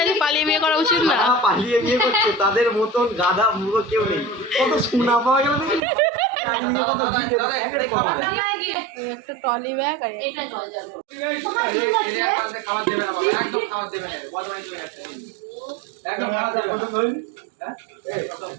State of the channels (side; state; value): left; drops out; at 5.8 s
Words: পালিয়ে বিয়ে করা উচিত না যারা পালিয়ে বিয়ে করছে তাদের মতন গাধা মুখো কেউ নেই। কত সোনা পাওয়া গেল দেখি চারিদিকে কত গিফট প্যাকেট পাওয়া যায়। এই একটা ট্রলি ব্যাগ আর এটা জল যাবে কালকে খাবার দেবে না বাবা, একদম খাবার দেবে না, বদমাইশ হয়ে গেছে একদম খাবার দেবে না। হ্যাঁ?